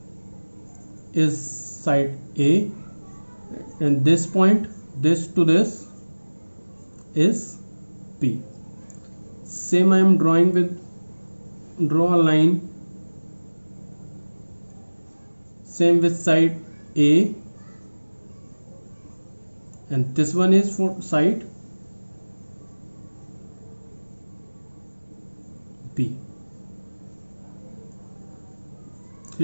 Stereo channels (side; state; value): both; inverted; correlation -1.00